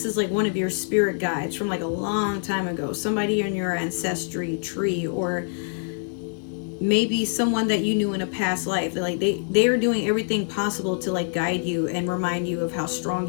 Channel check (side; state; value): right; silent; 62 dB below the other